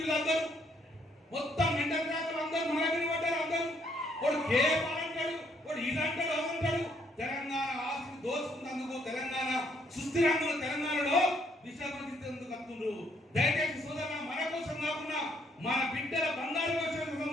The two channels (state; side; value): normal; both; correlation 0.69